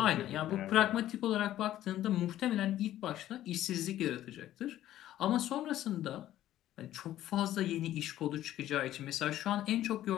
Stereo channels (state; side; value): quieter; right; 13.1 dB